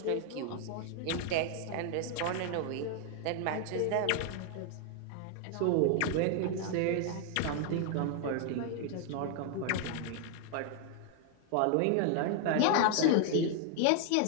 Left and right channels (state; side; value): different; both; correlation 0.00